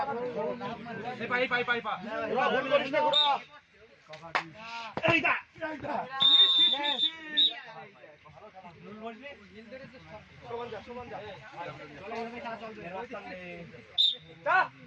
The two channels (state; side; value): identical; both; correlation 1.00